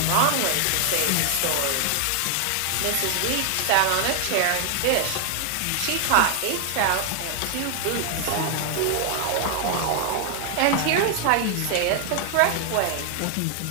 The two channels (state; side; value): different; both; correlation 0.00